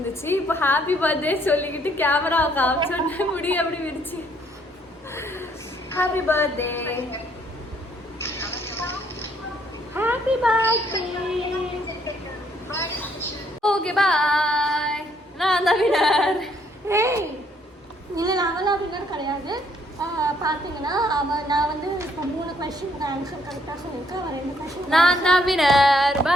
இப்போ ஹாப்பி பர்த்டே சொல்லிக்கிட்டு கேமராவை காமிச்சோன்னே முடி அப்படி விரிச்சு. Happy birthday. Happy birthday. Okay bye. நான் தான் வினர். ஏய் இல்லை அவெல்லாம் வின்னர் கிடையாது. பார்த்தீங்கன்னா நான் வந்து இப்போ 3 கொஸ்டினுக்கு ஆன்சர் கரெக்டாக சொல்லியிருக்கேன். அவன் 2 கொஸ்டின். நான் தான் வினர்.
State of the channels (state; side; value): normal; both; correlation 0.67